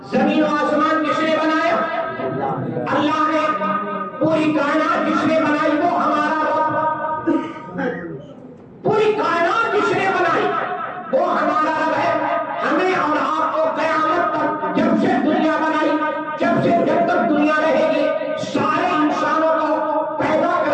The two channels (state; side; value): identical; both; correlation 1.00